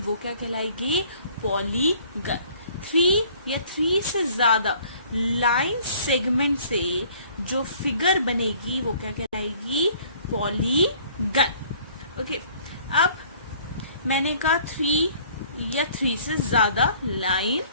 क्या कहलाएगी, पॉलीगन। 3 या 3 से ज्यादा लाइन सेगमेंट से जो फिगर बनेगी वो क्या कहलाएगी, पॉलीगन। ओके, अब मैंने कहा 3 या 3 से ज्यादा लाइन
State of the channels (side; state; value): both; inverted; correlation -0.56